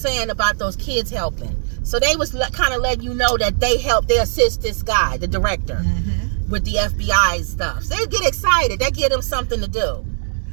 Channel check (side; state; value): left; silent; 66 dB below the other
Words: about those kids helping. So they was kind of letting you know that they assist this guy, the director, with the FBI stuff. So they get excited. That give them something to do.